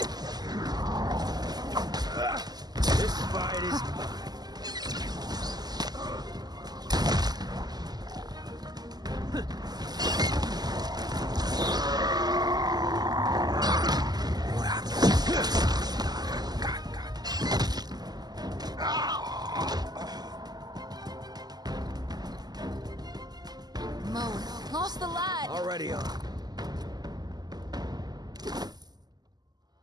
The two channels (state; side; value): late; left; 0.20 ms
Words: This fight is mine. Lost the light. Already on.